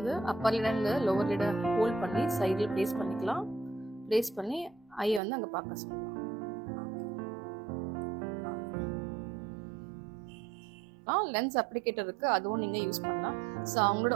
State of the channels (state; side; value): drops out; left; at 5.2 s